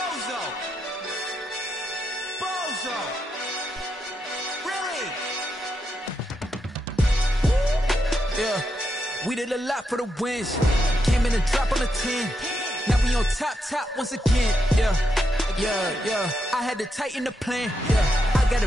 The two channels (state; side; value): normal; both; correlation 0.83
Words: Bozo. Bozo. Really? Yeah, we did a lot for the wins. Came in and dropped on the 10. Now we on top once again. Yeah. I had to tighten the plan. Yeah, I got